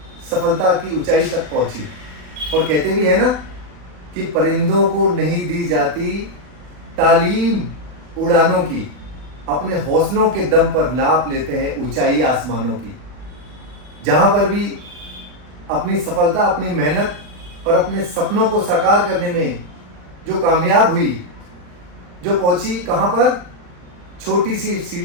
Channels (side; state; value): left; late; 40 ms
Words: सफलता की ऊंचाई तक पहुंची। और कहते भी है ना कि परिंदों को नहीं दी जाती तालीम उड़ानों की, अपने हौसलों के दम पर नाप लेते हैं ऊंचाई आसमानों की। जहां पर भी अपनी सफलता, अपनी मेहनत और अपने सपनों को साकार करने में जो कामयाब हुई, जो पहुंची कहां पर, छोटी सी